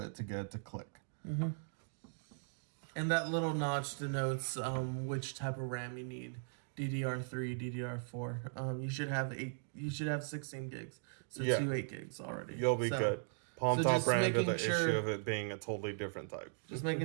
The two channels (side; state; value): left; silent; digital silence